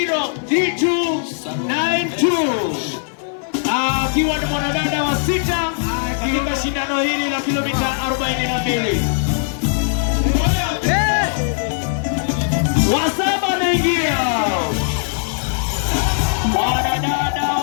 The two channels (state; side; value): silent; right; 62 dB below the other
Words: akiwa ni mwanadada wa sita katika shindano hili la kilomita 42. Wa saba naingia mwanadada